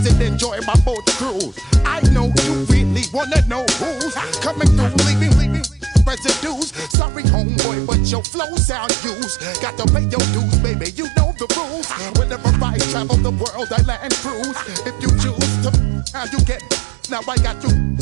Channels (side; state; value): left; drops out; at 7.0 s